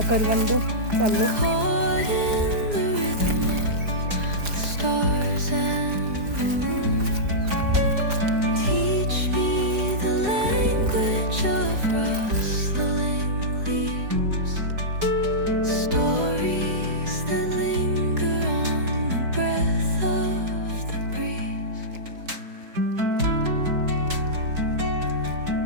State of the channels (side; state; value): left; late; 4.8 ms